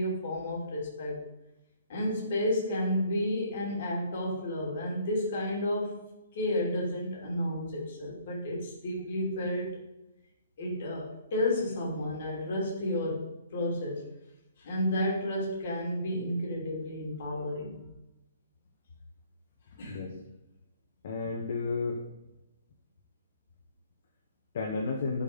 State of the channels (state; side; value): inverted; both; correlation -0.60